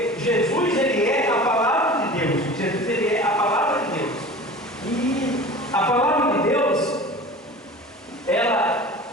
Jesus, Ele é a palavra de Deus. Jesus, Ele é a palavra de Deus. E a palavra de Deus, ela,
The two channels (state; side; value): normal; both; correlation 0.38